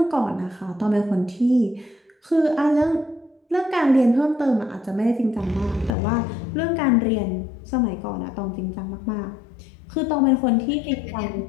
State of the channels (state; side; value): drops out; right; at 5.9 s